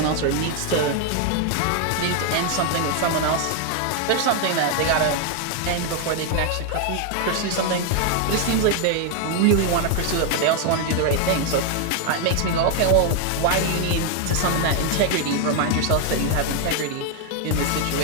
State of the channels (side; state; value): both; different; correlation 0.01